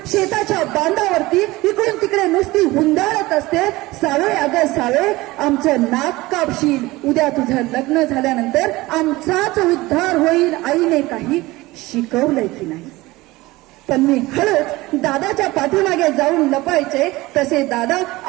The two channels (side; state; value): left; quieter; 20.0 dB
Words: शेताच्या बांधावरती इकडून तिकडे नुसती हुंदाळत असते. सावे, अगं सावे, आमचं नाक कापशील. उद्या तुझं लग्न झाल्यानंतर आमचाच उद्धार होईल. आईने काही शिकवलंय की नाही? पण मी हळूच दादाच्या पाठीमागे जाऊन लपायचे. तसे दादा